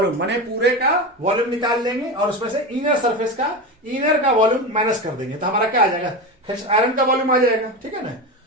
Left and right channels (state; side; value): normal; both; correlation 0.21